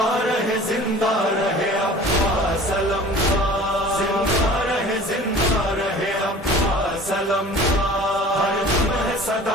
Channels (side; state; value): both; normal; correlation 0.44